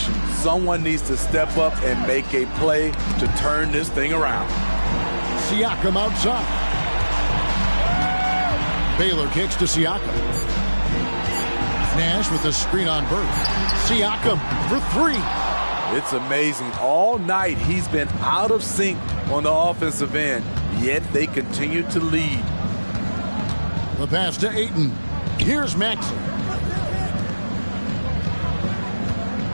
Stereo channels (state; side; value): inverted; both; correlation -1.00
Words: Someone needs to step up and make a play to turn this thing around. Siakam outside. Baylor kicks to Siakam. Nash with the screen on Bird. Siakam for three. It's amazing. All night he's been out of sync on the offensive end, yet they continue to lead. The pass to Ayton. Here's Maxey.